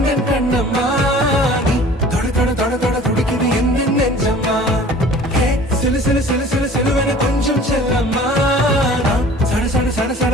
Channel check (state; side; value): normal; both; correlation 0.47